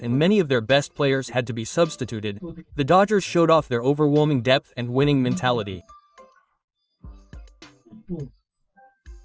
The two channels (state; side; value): identical; both; correlation 1.00